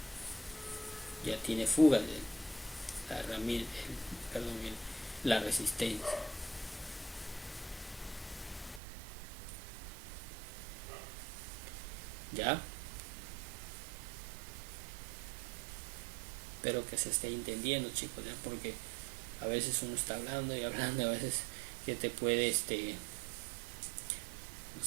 Ya tiene fuga de la herramienta, la resistencia. ¿Ya? Espero que se esté entendiendo, chicos, ya, porque a veces uno está hablando y hablando, a veces que te puede, no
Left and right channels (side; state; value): left; drops out; at 8.8 s